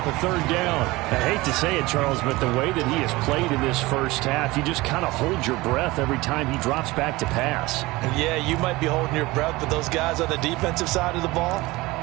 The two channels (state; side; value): quieter; left; 20.8 dB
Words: a 3rd down. I hate to say it, Charles, but the way that he has played in this first half, you just kind of hold your breath every time he drops back to pass. Yeah, you might be holding your breath, but those guys on the defensive side of the ball,